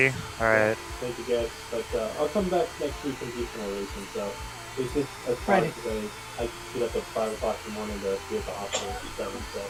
Alright. Thank you guys, but I'll come back next week and do some more racing, so. It's just as far Friday. as I get up at 5 o'clock in the morning to be at the hospital at 7, so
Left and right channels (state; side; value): identical; both; correlation 1.00